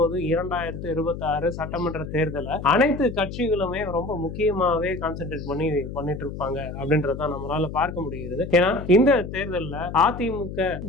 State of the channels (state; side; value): noise; left; hum, 9 dB below the sound